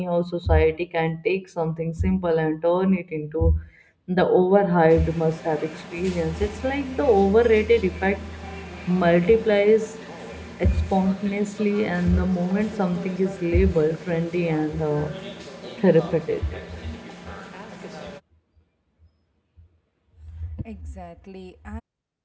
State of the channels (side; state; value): both; identical; correlation 1.00